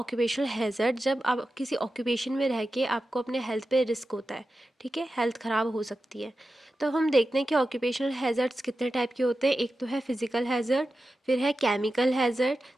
हैज़र्ड। जब आप किसी ऑक्यूपेशन में रह के आपको अपने हेल्थ पे रिस्क होता है, ठीक है, हेल्थ ख़राब हो सकती है। तो हम देखते हैं कि ऑक्यूपेशनल हैज़र्ड्स कितने टाइप के होते हैं। एक तो है फिज़िकल हैज़र्ड, फिर है केमिकल हैज़र्ड,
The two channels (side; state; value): both; normal; correlation 0.92